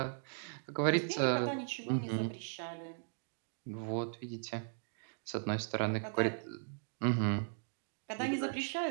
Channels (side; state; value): left; silent; digital silence